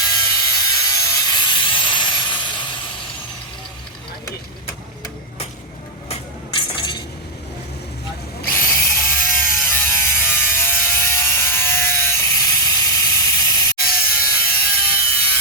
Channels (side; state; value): both; normal; correlation -0.01